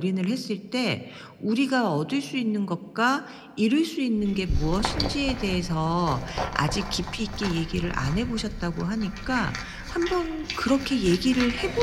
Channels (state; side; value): identical; both; correlation 1.00